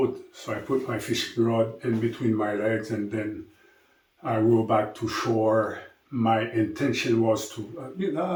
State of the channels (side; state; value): both; identical; correlation 1.00